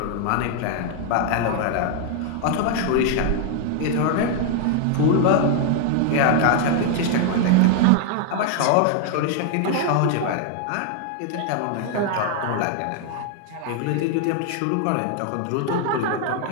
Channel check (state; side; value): different; both; correlation 0.00